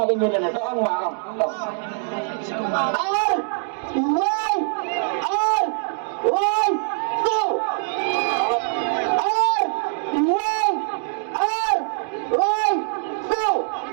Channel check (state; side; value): silent; left; digital silence